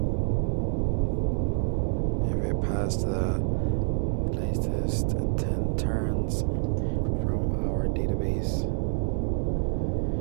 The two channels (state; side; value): silent; left; digital silence